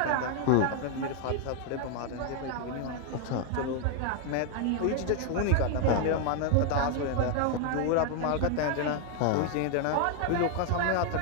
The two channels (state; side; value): different; both; correlation 0.00